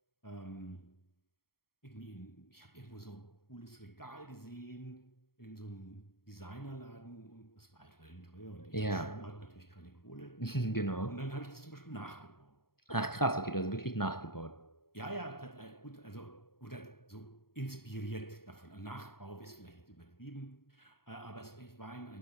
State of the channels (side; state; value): right; late; 0.93 ms